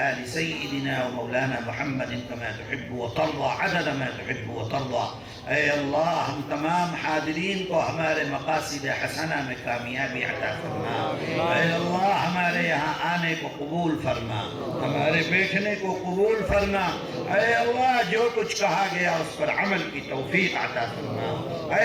آل سيدنا ومولانا محمد كما تحب وترضى عدد ما تحب وترضى. اے اللہ ہم تمام حاضرین کو ہمارے مقاصد حسنہ میں کامیابی عطا فرما. اے اللہ ہمارے یہاں آنے کو قبول فرما, ہمارے بیٹھنے کو قبول فرما. اے اللہ جو کچھ کہا گیا اس پر عمل کی توفیق عطا فرما.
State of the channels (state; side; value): identical; both; correlation 1.00